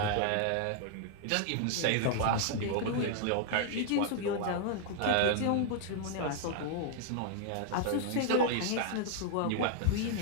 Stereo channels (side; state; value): both; different; correlation 0.00